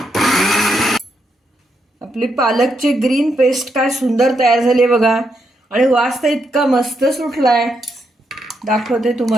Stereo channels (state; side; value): normal; both; correlation 0.80